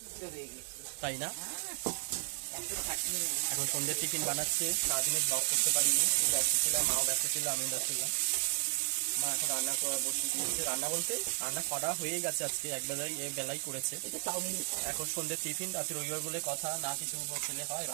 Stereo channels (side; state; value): left; silent; digital silence